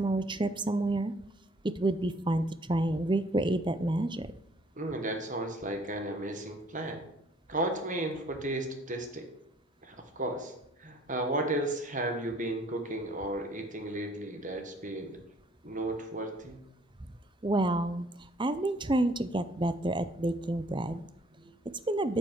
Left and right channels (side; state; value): both; normal; correlation 0.60